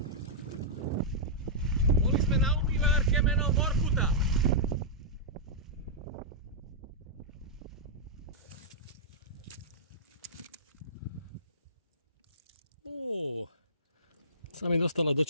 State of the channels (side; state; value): both; normal; correlation -0.13